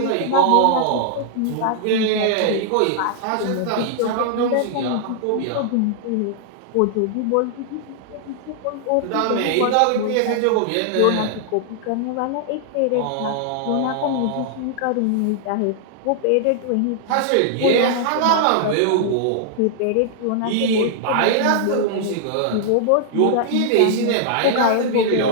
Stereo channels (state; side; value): different; both; correlation -0.01